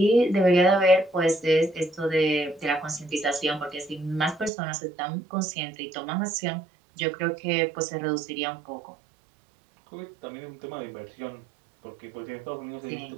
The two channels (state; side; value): drops out; left; at 4.5 s